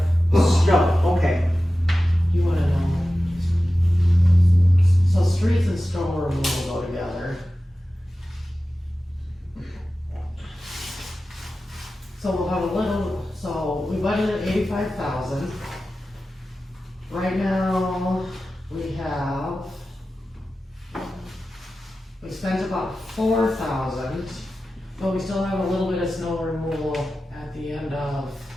snow, okay. You wanna know? So streets and snow removal go together. So we'll have a little, so we budgeted 85,000. Right now, we spent about 4,000, but we still have a little bit of snow removal at the end of,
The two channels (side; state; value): both; normal; correlation 0.94